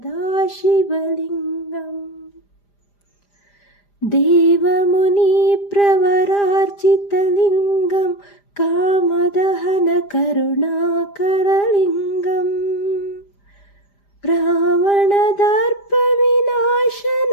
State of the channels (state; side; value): late; right; 5.0 ms